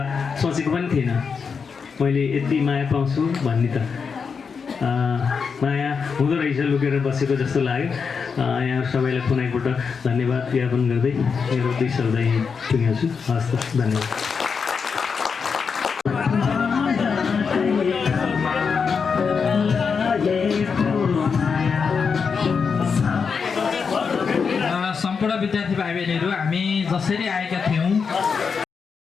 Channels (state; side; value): quieter; right; 5.7 dB